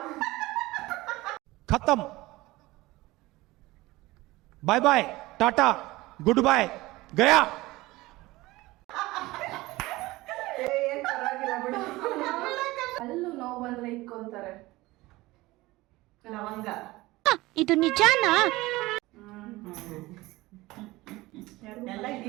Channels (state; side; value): quieter; left; 19.7 dB